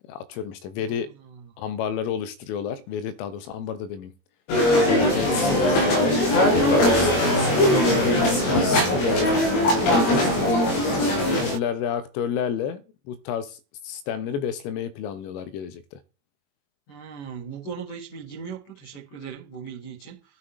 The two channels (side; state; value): right; late; 21 ms